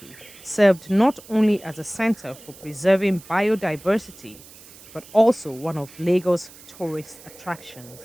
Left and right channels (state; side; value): noise; right; hiss, 21 dB below the sound